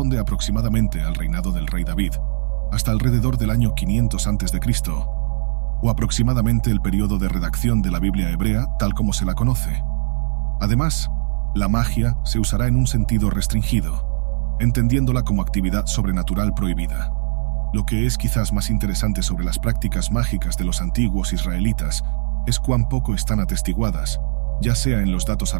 aproximadamente al reinado del rey David, hasta alrededor del año 500 a.C., o aproximadamente el periodo de redacción de la Biblia hebrea tal como se la conoce. Además, la magia se usará en un sentido restringido, entendiéndola como actividad sobrenatural prohibida. Lo que es quizás más interesante sobre las prácticas mágicas de los antiguos israelitas es cuán poco están atestiguadas, ya sea en los datos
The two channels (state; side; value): silent; left; digital silence